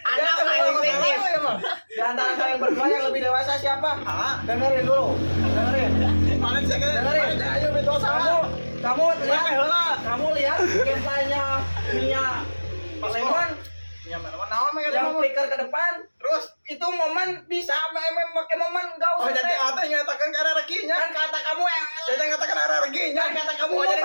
Anda mulai fiktif. Di antara kalian berdua yang lebih dewasa siapa? Dengerin dulu. Dengerin. Dengerin. Ayo betul sama. Kamu lihat gameplaynya Mia Lemon yang flicker ke depan, terus itu momen bisa pakai momen enggak usah. Oh jadi ada yang nyatakan karena rekinya. Kan kata kamu jadi nyatakan karena rekinya. Kan kata kamu jadi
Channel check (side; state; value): both; inverted; correlation -1.00